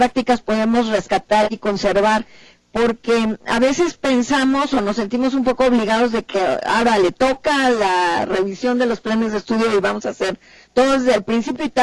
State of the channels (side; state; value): both; identical; correlation 1.00